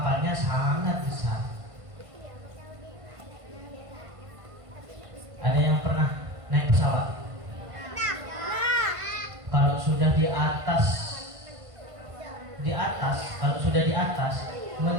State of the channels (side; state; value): left; late; 1.5 ms